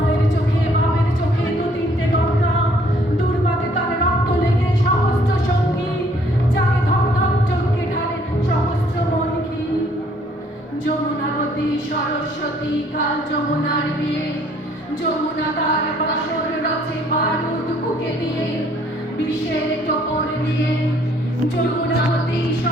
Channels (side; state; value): both; normal; correlation 0.62